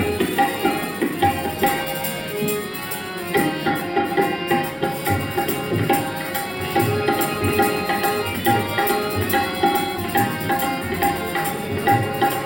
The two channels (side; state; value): both; identical; correlation 1.00